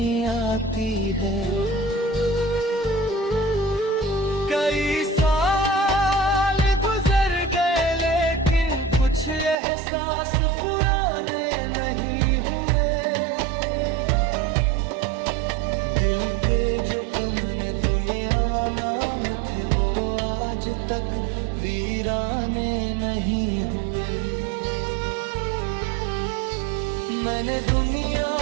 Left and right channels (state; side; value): drops out; left; at 9.6 s